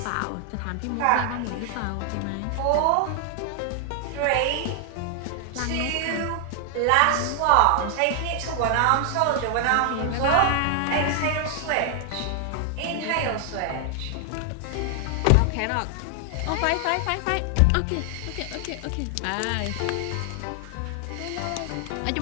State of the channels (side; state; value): both; different; correlation 0.00